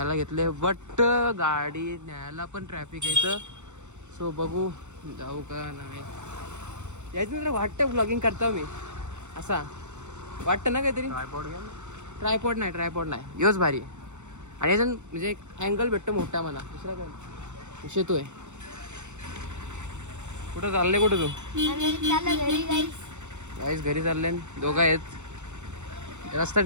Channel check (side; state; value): left; late; 0.84 ms